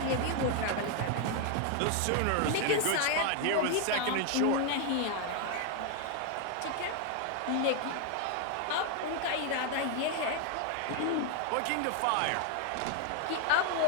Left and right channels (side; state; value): both; different; correlation 0.01